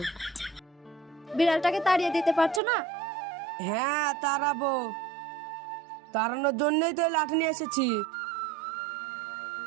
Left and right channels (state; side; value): drops out; left; at 2.6 s